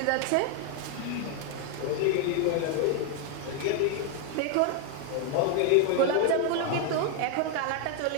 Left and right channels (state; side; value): different; both; correlation 0.00